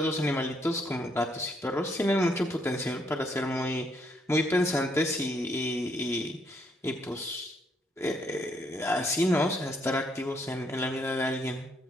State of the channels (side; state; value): both; normal; correlation 0.72